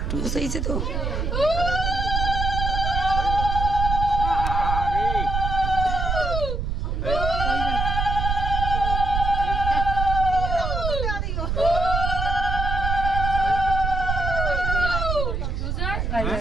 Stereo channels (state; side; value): noise; right; rumble, 1 dB below the sound